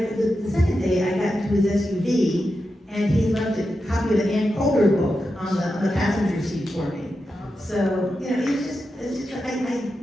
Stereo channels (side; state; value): both; normal; correlation 0.89